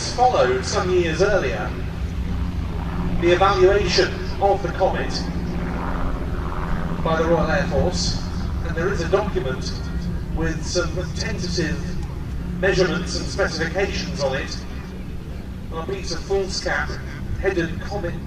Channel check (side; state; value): both; identical; correlation 1.00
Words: followed some years earlier the evaluation of the comet by the Royal Air Force, and there is a document with some tentative measurements and specifications on it on a piece of foolscap headed comet